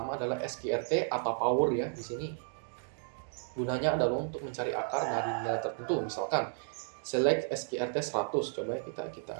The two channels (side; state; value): left; silent; digital silence